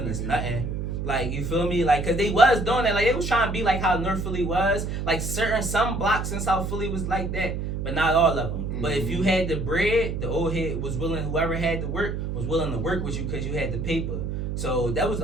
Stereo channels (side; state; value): right; noise; hum, 3 dB below the sound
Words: us nothing. Like, you feel me? Like, because they was doing that. Like, they was trying to be like how North Philly was. Like, some blocks in South Philly was like that. But not all of them. But if you had the bread, the old head was willing, whoever had the work, was willing to work with you because you had the paper. So that was